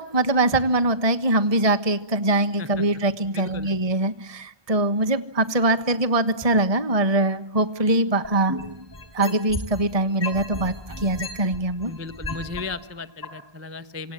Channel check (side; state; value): left; late; 1.2 ms